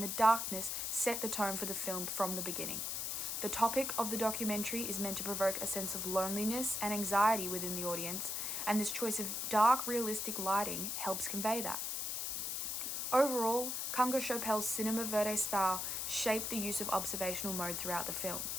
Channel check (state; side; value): noise; left; hiss, 2 dB below the sound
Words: darkness set the tone for the film from the beginning. The topic of the documentary is meant to provoke a sense of loneliness and anxiety within the audience, and this choice of dark, realistic lighting helps convey that. Overall, Kunga Chopel's cinema verite style shaped the use of observational mode throughout the film.